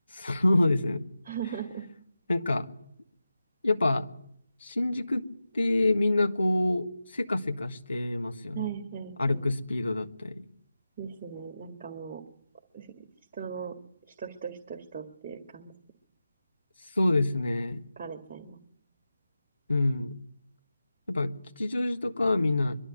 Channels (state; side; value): inverted; both; correlation -0.93